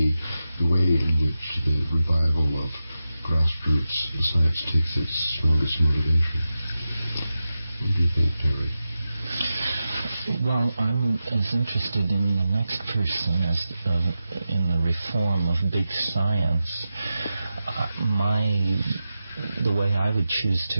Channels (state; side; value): inverted; both; correlation -0.92